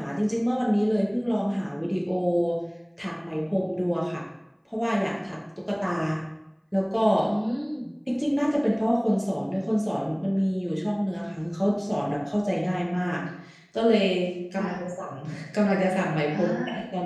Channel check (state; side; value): identical; both; correlation 1.00